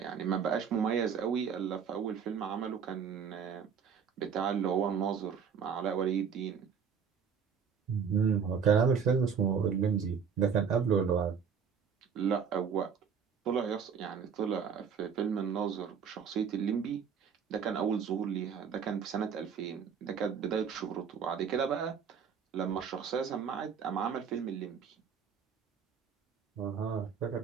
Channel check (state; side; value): quieter; left; 6.9 dB